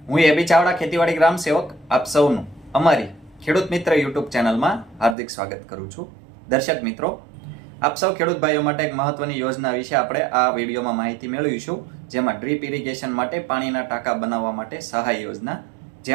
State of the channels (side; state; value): left; drops out; at 5.2 s